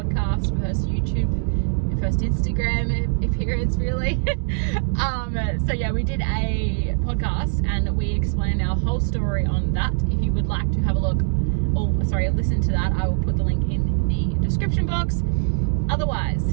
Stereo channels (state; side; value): silent; left; digital silence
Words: first YouTube, first Instagram appearance really. whole story on that. If you would like to have a look, or sorry, listen to that, I will put the link in the description box.